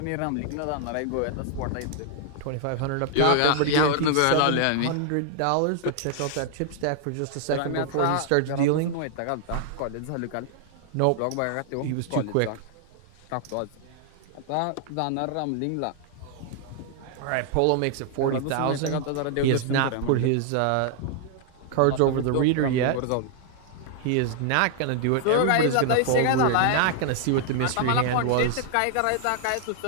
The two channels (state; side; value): different; both; correlation 0.00